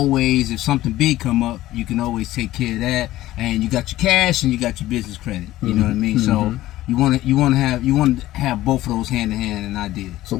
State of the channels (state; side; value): quieter; right; 15.5 dB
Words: if something big come up, you can always take care of that. And you got your cash and you got your business credit. You know what I mean? So you want to have both of those hand in hand, and I did. So